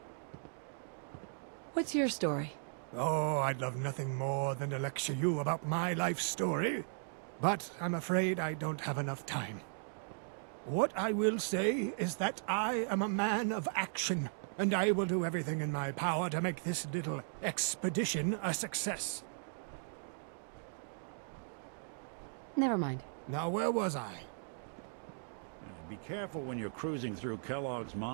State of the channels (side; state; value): left; silent; digital silence